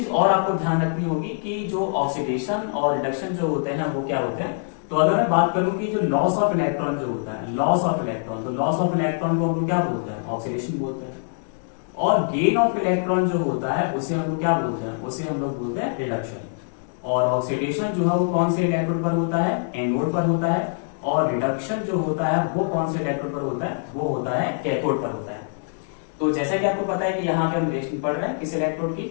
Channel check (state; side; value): silent; right; digital silence